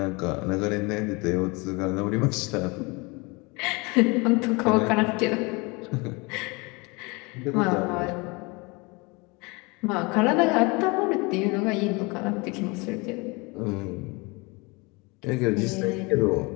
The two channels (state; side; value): quieter; right; 27.2 dB